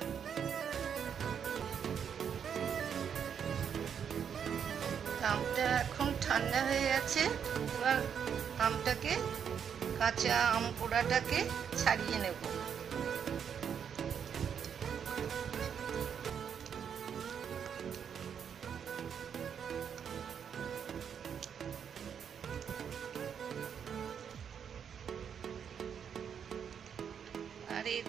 আমটা এখন ঠান্ডা হয়ে গেছে। এবার আমটাকে, কাঁচা আম পোড়াটাকে ছাড়িয়ে নেব। আর এর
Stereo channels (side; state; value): left; quieter; 7.7 dB